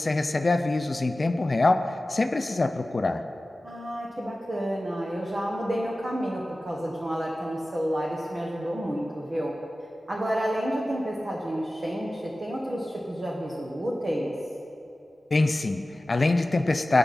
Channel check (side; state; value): both; normal; correlation 0.96